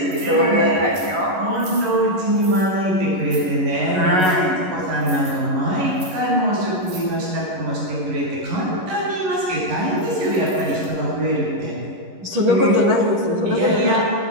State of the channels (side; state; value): left; late; 11 ms